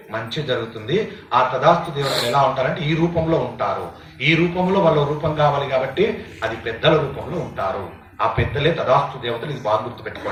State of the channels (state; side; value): identical; both; correlation 1.00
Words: మంచి జరుగుతుంది. ఆ తదాస్తు దేవతలు ఎలా ఉంటారంటే ఈ రూపంలో ఉంటారు. ఈ రూపంలో వాళ్ళ రూపం కావాలి కాబట్టి అది పెద్దల రూపంలో ఉంటారు. ఆ పెద్దలే తదాస్తు దేవతలు. ఇది బాగా